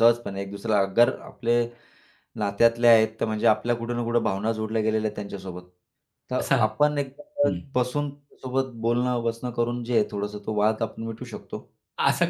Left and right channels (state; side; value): identical; both; correlation 1.00